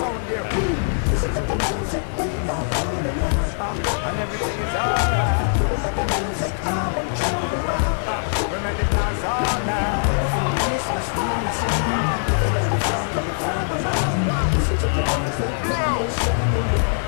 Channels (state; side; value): silent; right; digital silence